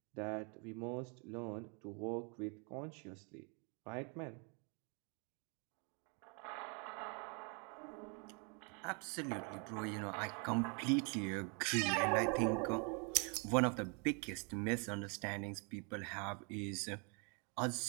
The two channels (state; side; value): quieter; left; 35.5 dB